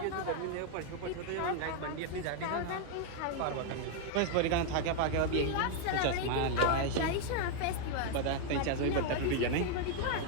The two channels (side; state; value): both; different; correlation 0.00